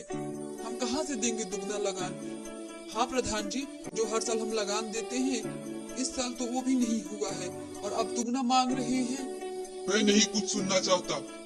हम कहाँ से देंगे दुगना लगान? हाँ प्रधान जी, जो हर साल हम लगान देते हैं, इस साल तो वो भी नहीं हुआ है और अब दुगना मांग रहे हैं। मैं नहीं कुछ सुनना चाहता।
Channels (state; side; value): identical; both; correlation 1.00